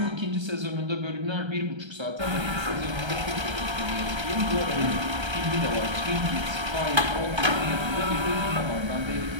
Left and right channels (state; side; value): late; left; 1.3 ms